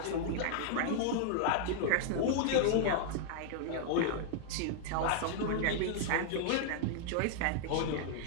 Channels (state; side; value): different; both; correlation -0.01